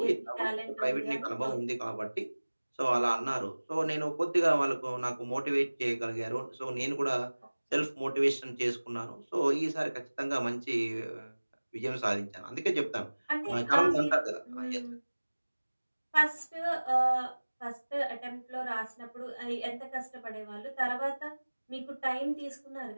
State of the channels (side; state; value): both; inverted; correlation -1.00